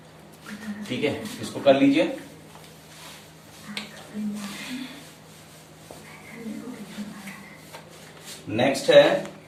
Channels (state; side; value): identical; both; correlation 1.00